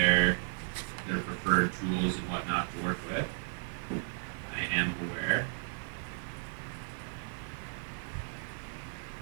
preferred tools and whatnot to work with. I am aware.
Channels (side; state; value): left; silent; 55 dB below the other